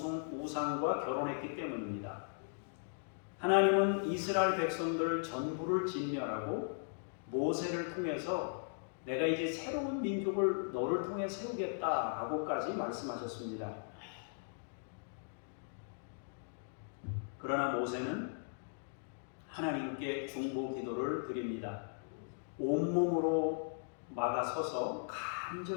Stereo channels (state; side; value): silent; right; digital silence